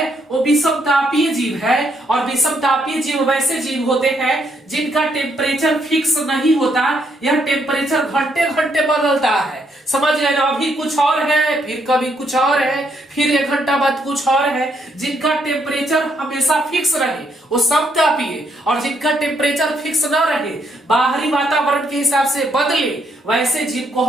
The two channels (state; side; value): normal; both; correlation 0.74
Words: वो विषमतापीय जीव है, और विषमतापीय जीव वैसे जीव होते हैं जिनका टेम्परेचर फिक्स नहीं होता, यह टेम्परेचर घंटे घंटे बदलता है, समझ गए ना। अभी कुछ और है, फिर कभी कुछ और है, फिर 1 घंटा बाद कुछ और है जिनका टेम्परेचर हमेशा फिक्स रहे वो समतापीय, और जिनका टेम्परेचर फिक्स न रहे बाहरी वातावरण के हिसाब से बदले वैसे जीव को